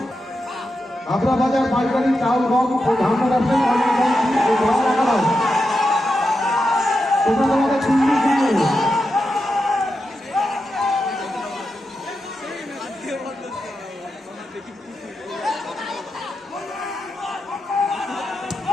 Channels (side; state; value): both; normal; correlation 0.88